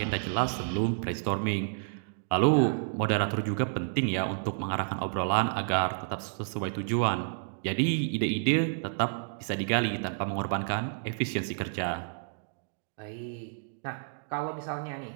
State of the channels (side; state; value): left; silent; digital silence